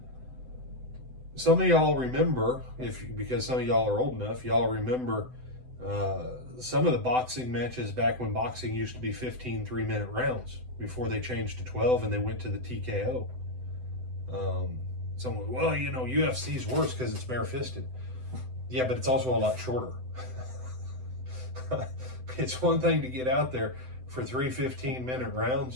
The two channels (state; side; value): late; left; 7.9 ms